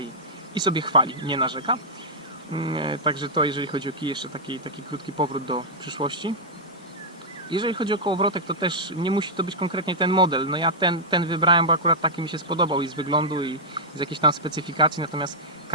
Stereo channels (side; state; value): both; normal; correlation -0.09